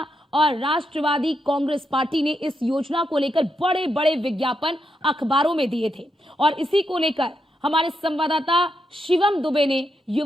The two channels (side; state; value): both; normal; correlation 0.83